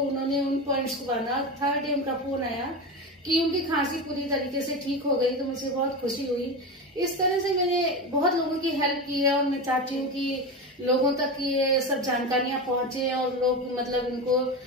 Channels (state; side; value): normal; both; correlation 0.21